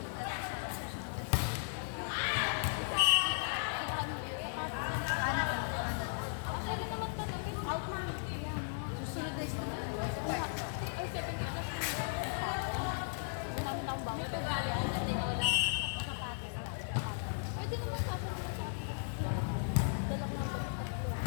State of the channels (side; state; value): right; silent; digital silence